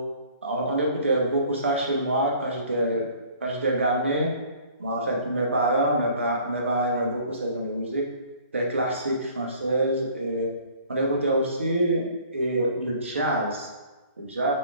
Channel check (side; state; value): both; inverted; correlation -0.53